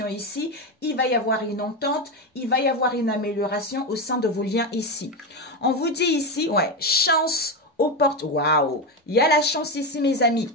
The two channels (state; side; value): normal; both; correlation 0.14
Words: ici. Il va y avoir une entente, il va y avoir une amélioration au sein de vos liens ici. On vous dit ici, ouais, chance aux portes. Waouh! Il y a la chance ici, mes amis.